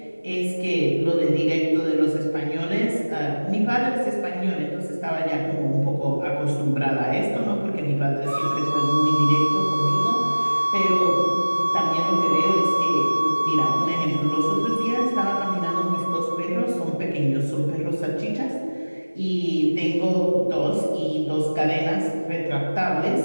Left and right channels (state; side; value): inverted; both; correlation -1.00